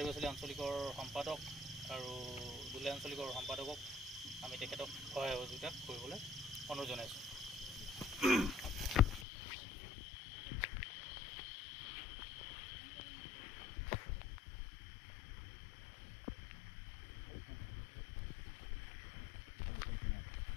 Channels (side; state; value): right; drops out; at 9.2 s